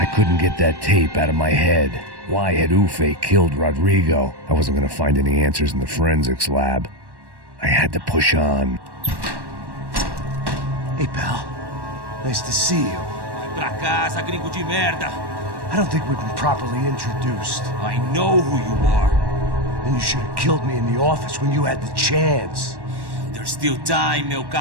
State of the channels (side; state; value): left; late; 1.1 ms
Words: Couldn't get that tape out of my head. Why had Ufe killed Rodrigo? I wasn't gonna find any answers in the forensics lab. I had to push on. Hey, pal. Nice to see you. Vai pra casa, gringo de merda. I don't think we've been properly introduced. I know who you are. Then you should have killed me in the office when you had the chance. There's still time, meu